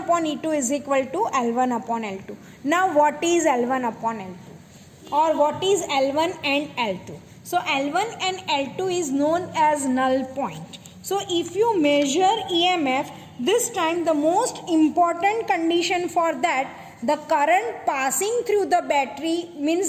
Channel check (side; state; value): both; identical; correlation 1.00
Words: upon E2 is equal to L1 upon L2. Now what is L1 upon L2? Or what is L1 and L2? So L1 and L2 is known as null point. So if you measure EMF, this time the most important condition for that, the current passing through the battery